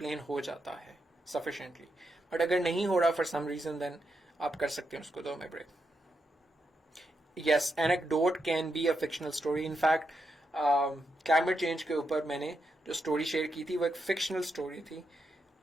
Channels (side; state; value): both; normal; correlation 0.83